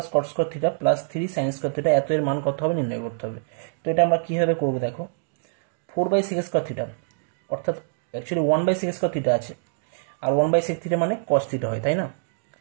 cot square theta plus 3 sine square theta, এত এর মান কত হবে নির্ণয় করতে হবে। তো এটা আমরা কীভাবে করবো দেখো, 4/6 স্কোয়ার থিটা অর্থাৎ অ্যাকচুয়ালি 1/6 স্কোয়ার থিটা আছে, আর 1/6 থিটা মানে কস থিটা হয়, তাই না?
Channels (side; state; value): left; silent; digital silence